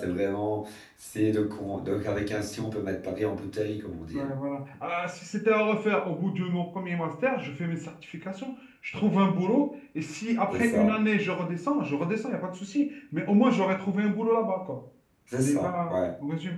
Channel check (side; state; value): both; identical; correlation 1.00